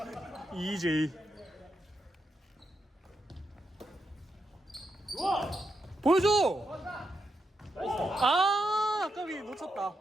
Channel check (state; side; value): normal; both; correlation 0.84